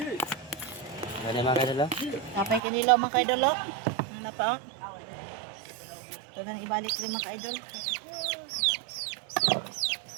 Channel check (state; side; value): drops out; left; at 2.6 s